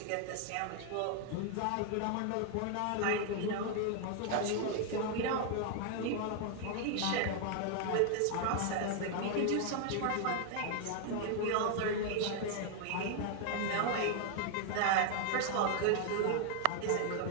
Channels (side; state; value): both; different; correlation 0.00